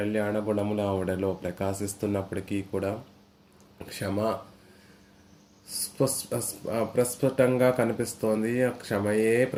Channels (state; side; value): identical; both; correlation 1.00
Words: గుణములు ఆవిడలో ప్రకాశిస్తున్నప్పటికీ కూడా క్షమ ప్రస్ఫుటంగా కనిపిస్తోంది. క్షమయే